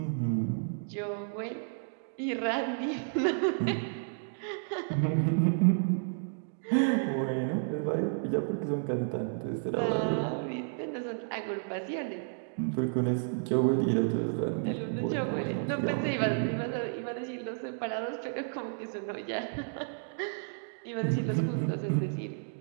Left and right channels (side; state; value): left; silent; digital silence